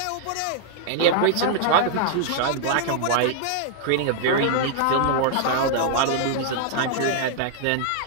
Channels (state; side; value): different; both; correlation -0.01